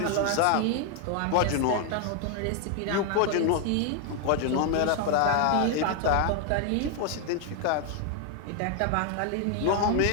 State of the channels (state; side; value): different; both; correlation 0.00